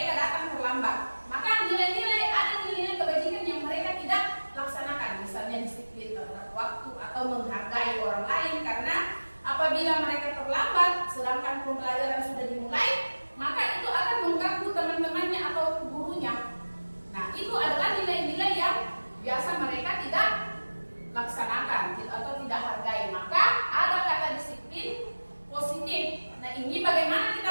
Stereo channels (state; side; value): inverted; both; correlation -1.00